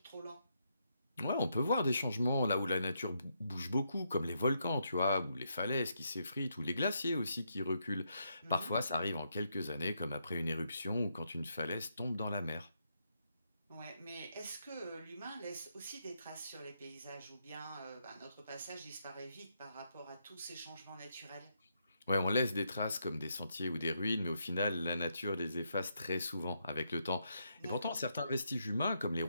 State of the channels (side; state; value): both; inverted; correlation -0.79